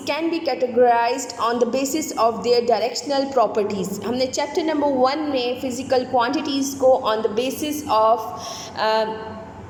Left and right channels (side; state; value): both; identical; correlation 1.00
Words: can be categorised on the basis of their directional properties. हमने चैप्टर नंबर 1 में फ़िज़िकल क्वांटिटीज़ को on the basis of